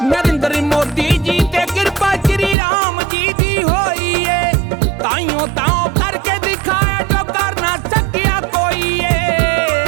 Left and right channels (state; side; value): drops out; left; at 2.6 s